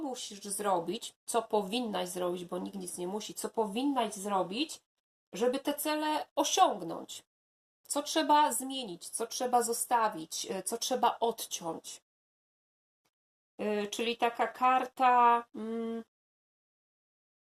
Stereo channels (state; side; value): identical; both; correlation 1.00